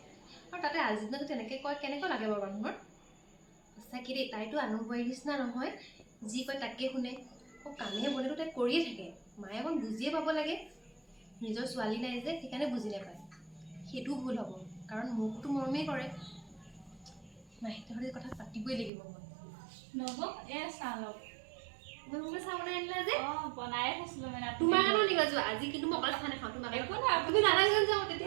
আৰু তাতে আজি দিনত তেনেকৈ কয় কেনেকুৱা লাগে বাৰু মানুহৰ সঁচাকৈ দেই তাইতো আনুবাৰীৰ নিচিনা নহয় যি কয় তাকে শুনে কামে বনেতো তাই কৰিয়ে থাকে মায়ে অকণ বুজিয়ে পাব লাগে নিজৰ ছোৱালী নাই যে সেইকাৰণে বুজি নাপায় সেইটো ভুল হ'ব কাৰণ মোকতো মৰমেই কৰে নাই তেখেতে কথা পাতিবই লাগিব মই নব চাহ লওক মই মোকে চাহ বনাই আনিলা যে অঁ বনায়ে থৈছিলোঁ মানে তোমাৰ কাৰণেও নিবা যোৱা আজি কিন্তু মই অকলে চাহ নাখাওঁ তোমাৰ একো নাই তুমি নালাগে যাওঁ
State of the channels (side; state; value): left; drops out; at 18.9 s